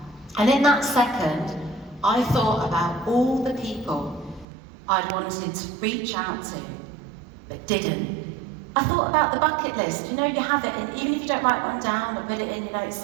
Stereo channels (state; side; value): drops out; left; at 4.5 s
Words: And in that second, I thought about all the people I'd wanted to reach out to, but didn't. I thought about the bucket list. You know, you have it, and even if you don't write one down or put it in your notes